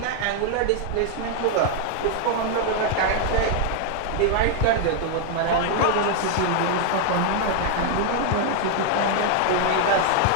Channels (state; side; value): different; both; correlation 0.00